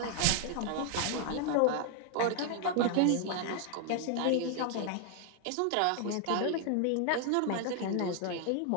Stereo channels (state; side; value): different; both; correlation 0.00